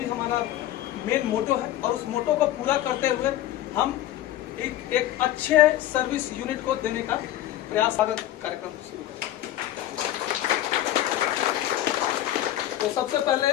हमारा मेन मोटो है। और उस मोटो को पूरा करते हुए हम एक अच्छे सर्विस यूनिट को देने का प्रयास कार्यक्रम शुरू करें। तो सबसे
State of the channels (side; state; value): right; quieter; 13.5 dB